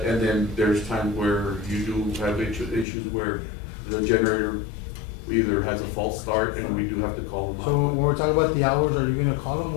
and then there's times where you do have issues where the generator either has a false start and we do have to call them out. So when we're talking about the hours, are you gonna call them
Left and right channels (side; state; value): right; drops out; at 2.9 s